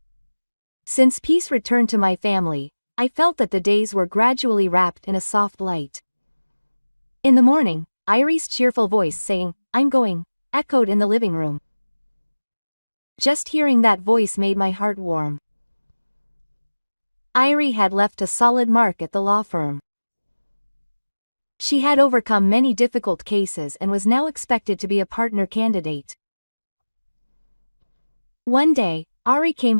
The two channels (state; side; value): inverted; both; correlation -1.00